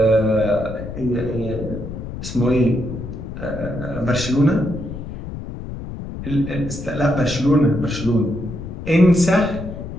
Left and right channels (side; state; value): left; noise; rumble, 9 dB below the sound